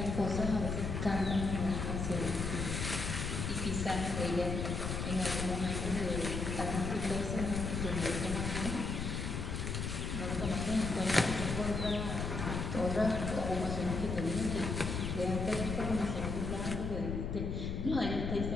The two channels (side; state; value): left; noise; rumble, 2 dB below the sound